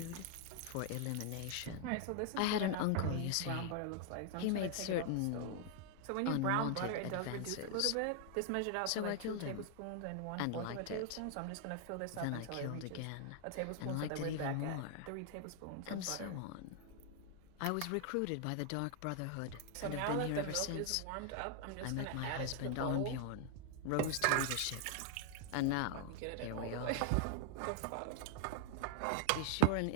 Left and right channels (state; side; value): different; both; correlation 0.00